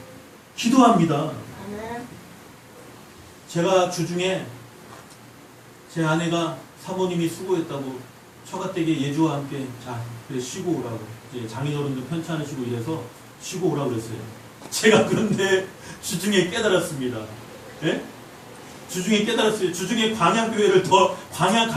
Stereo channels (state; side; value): identical; both; correlation 1.00